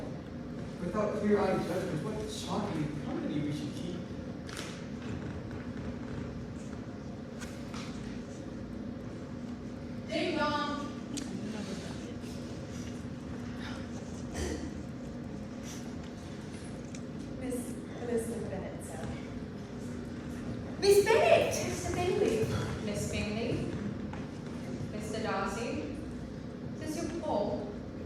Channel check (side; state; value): both; identical; correlation 1.00